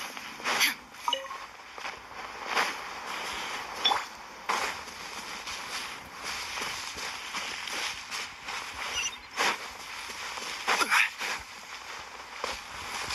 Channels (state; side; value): identical; both; correlation 1.00